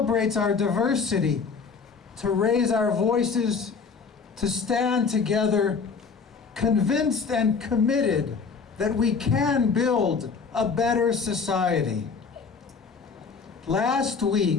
our diversity, to raise our voices, to stand together, convinced and committed that we can build a better society. Last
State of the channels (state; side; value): quieter; right; 5.3 dB